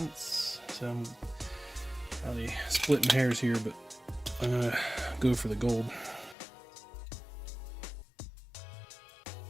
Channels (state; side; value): drops out; right; at 6.4 s